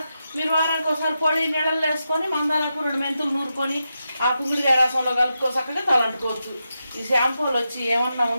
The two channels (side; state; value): both; inverted; correlation -0.88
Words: మీరు వారానికి ఒకసారి పొడి నీళ్ళల్లో వేసుకొని మందారకు 2 మెంతులు నూరుకొని ఆ కుంగుడికాయ రసంలో కలుపుకో చక్కగా తలంటుకోవచ్చు. ఈ షాంపూలు వచ్చి ఏమన్నా